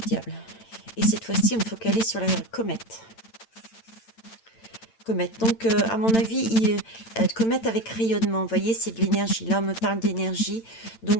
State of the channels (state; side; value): late; right; 8.9 ms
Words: Et cette fois-ci, on me focalise sur la comète. Comète. Donc, à mon avis, comète avec rayonnement. Vous voyez, c'est de l'énergie. Là, on me parle d'énergie.